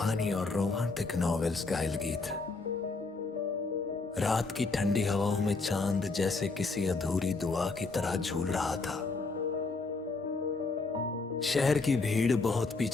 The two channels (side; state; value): right; quieter; 3.8 dB